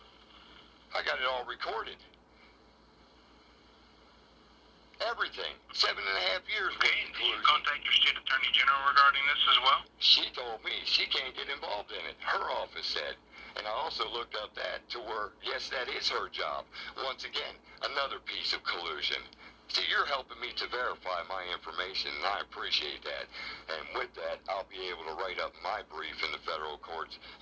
I got it all recorded. Everything. 7.5 years worth of Did you collusion. contact your state attorney general regarding this as well? She told me she can't get involved in it. Her office said. And I also looked up that to where, yes, that is her job. Once again, another piece of collusion. See, you're helping me to verify my information, and I appreciate that. And with that, I'll be able to write up my brief in the federal courts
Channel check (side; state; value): both; identical; correlation 1.00